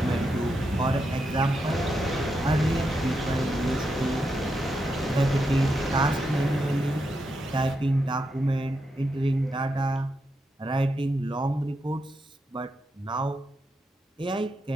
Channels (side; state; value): both; normal; correlation 0.84